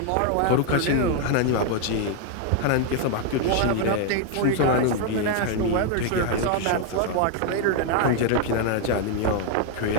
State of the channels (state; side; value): different; both; correlation 0.00